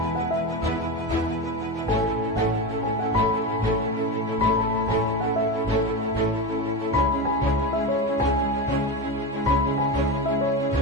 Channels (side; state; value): both; normal; correlation 0.19